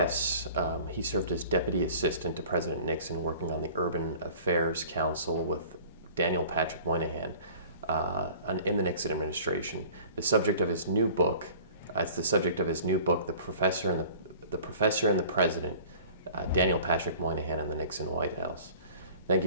He served as Deputy Assistant to President Nixon, working on the Urban Affairs Council with Daniel Patrick Moynihan in the Nixon administration. The subject of his new book, The Professor and the President, Daniel Patrick Moynihan and the Nixon White House. Thank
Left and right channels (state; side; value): inverted; both; correlation -0.46